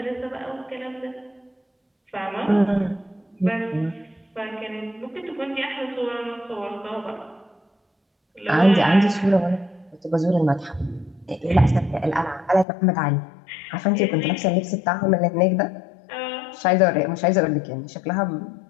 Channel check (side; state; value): right; drops out; at 12.7 s